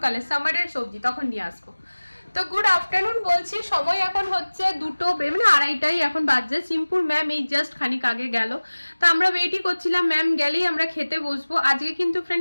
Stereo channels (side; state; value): both; inverted; correlation -1.00